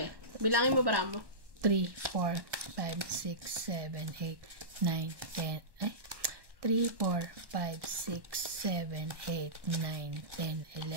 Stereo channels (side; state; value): left; late; 1.1 ms